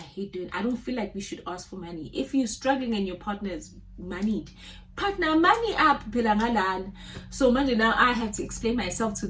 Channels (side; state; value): both; identical; correlation 1.00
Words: don't feel like we should ask for money. If you're struggling and your partner is moneyed, partner money up. So manje now I have to explain myself to